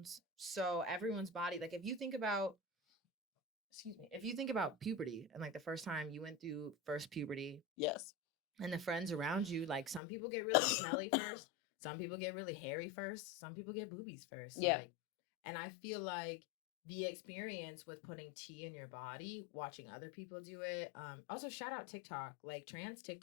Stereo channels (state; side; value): drops out; right; at 10.0 s